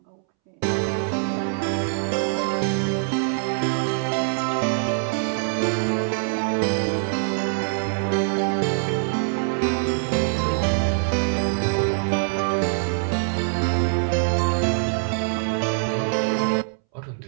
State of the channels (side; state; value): left; silent; 63 dB below the other